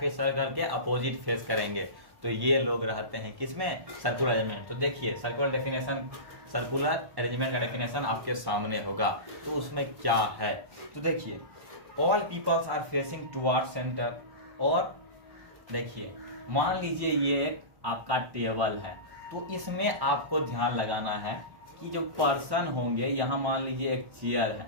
सर्कल के अपोजिट फेस करेंगे। तो ये लोग रहते हैं किसमें, सर्कुलर अरेंजमेंट। तो देखिए सर्कुलर डेफिनेशन, सर्कुलर अरेंजमेंट का डेफिनेशन आपके सामने होगा। तो उसमें क्या है, तो देखिए all peoples are facing toward centre. और देखिए मान लीजिए ये आपका टेबल है, तो इसमें आपको ध्यान लगाना है कि जो पर्सन होंगे, यहां मान लीजिए एक चेयर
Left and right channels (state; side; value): late; left; 1.1 ms